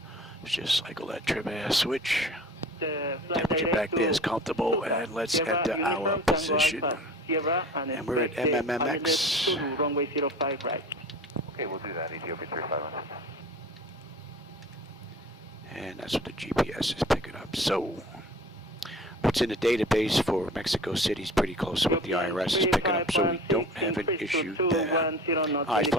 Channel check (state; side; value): normal; both; correlation 0.41